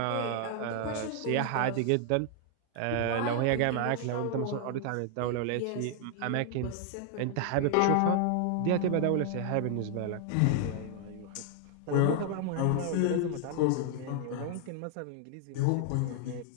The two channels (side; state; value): both; different; correlation 0.00